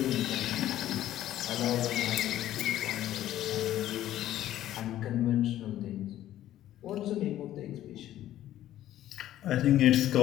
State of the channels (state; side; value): quieter; right; 13.0 dB